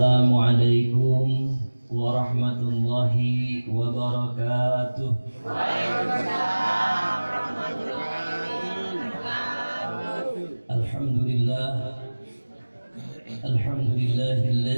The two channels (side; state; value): both; inverted; correlation -1.00